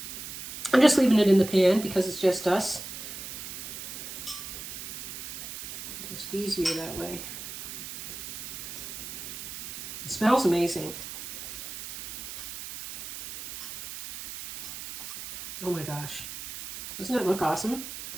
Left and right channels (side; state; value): right; noise; hiss, 9 dB below the sound